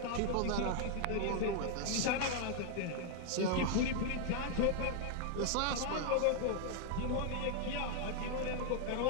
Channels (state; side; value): different; both; correlation 0.00